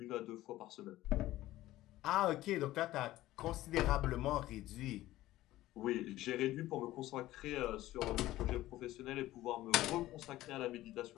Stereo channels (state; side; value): quieter; right; 15.8 dB